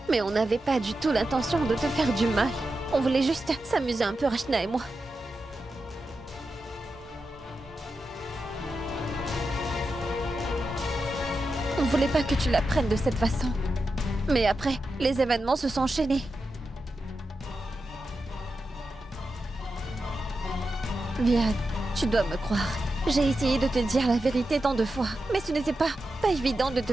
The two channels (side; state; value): both; normal; correlation 0.89